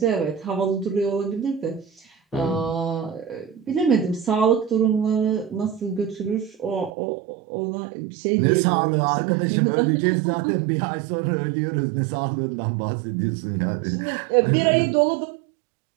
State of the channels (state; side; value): drops out; left; at 6.9 s